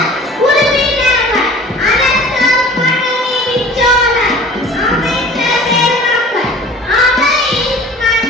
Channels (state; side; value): normal; both; correlation 0.44